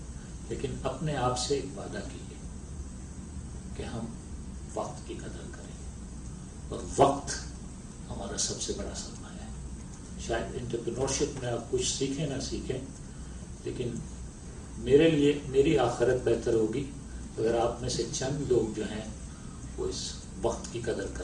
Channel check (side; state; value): both; identical; correlation 1.00